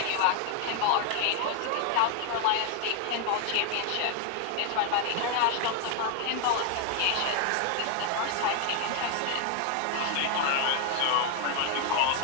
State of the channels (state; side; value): different; both; correlation 0.00